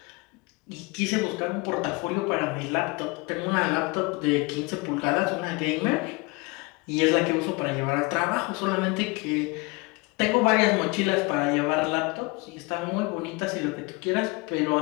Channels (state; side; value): quieter; right; 26.4 dB